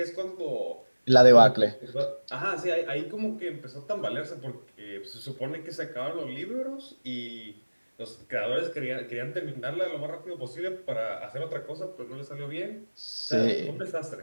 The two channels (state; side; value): inverted; both; correlation -1.00